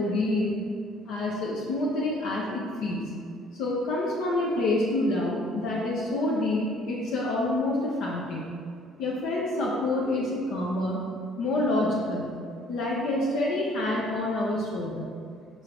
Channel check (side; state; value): both; normal; correlation 0.57